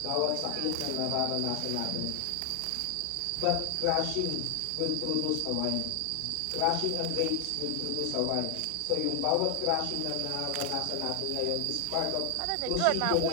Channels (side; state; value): both; different; correlation 0.00